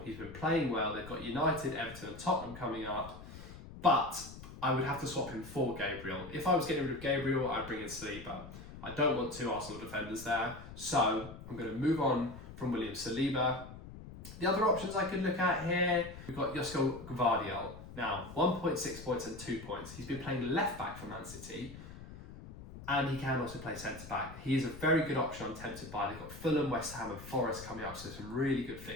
He's been playing well. They've got United, Everton and Tottenham coming up. But I would have to swap him for Gabriel. If I was getting rid of Gabriel, I'd bring in Saliba. I don't want 2 Arsenal defenders there, so I'm going to move on from William Saliba. The other options I could look at here, we've got Josko Gvardiol. Now, 1.6 points and 2 points. He's been playing left-back for Man City, and he can also play centre-back. He is a very good option I'm tempted by. They've got Fulham, West Ham and Forest coming up, so some really good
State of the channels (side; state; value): left; noise; rumble, 14 dB below the sound